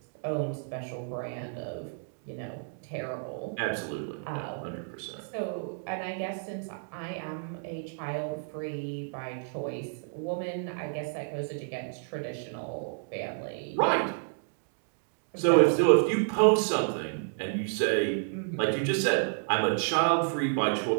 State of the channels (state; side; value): silent; left; digital silence